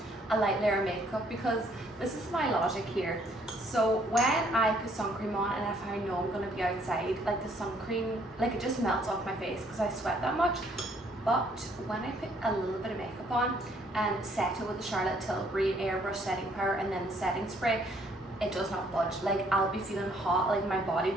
a light layer of makeup because this is my logic here. So when I put sun cream on and if I know I'm going to be outside, like the sun cream, like it just melts off my face because I sweat that much. But when I put a little bit of makeup on and set it with the Charlotte Tilbury airbrush setting powder and then the setting spray, it does not budge. Like I'll be feeling hot, like my body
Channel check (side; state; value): both; normal; correlation 0.65